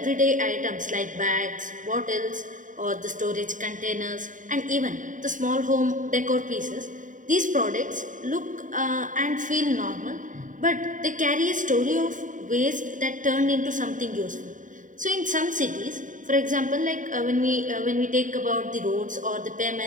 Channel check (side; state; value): left; late; 0.37 ms